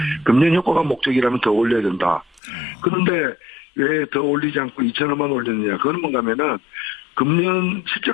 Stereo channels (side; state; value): right; drops out; at 2.4 s